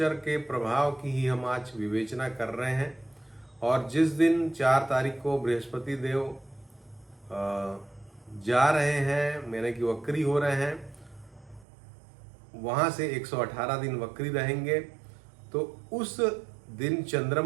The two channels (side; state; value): left; drops out; at 11.7 s